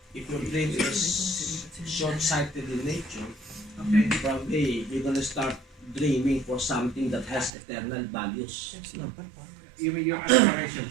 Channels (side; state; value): left; drops out; at 7.5 s